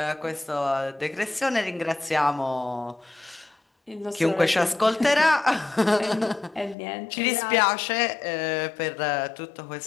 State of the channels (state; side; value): drops out; right; at 6.8 s